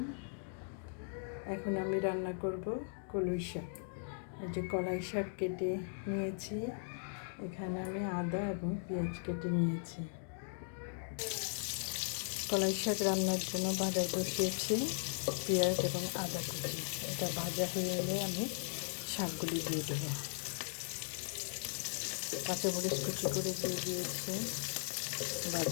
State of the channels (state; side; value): silent; right; digital silence